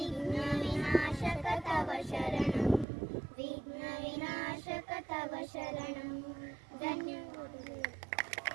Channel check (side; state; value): left; drops out; at 2.9 s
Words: ವಿನಾಶಕ ತವ ಶರಣಂ, ವಿಘ್ನ ವಿನಾಶಕ ತವ ಶರಣಂ.